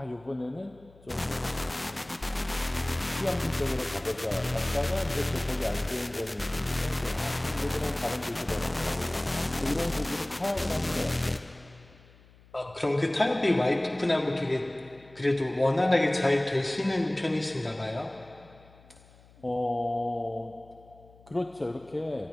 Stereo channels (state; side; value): noise; left; hum, 25 dB below the sound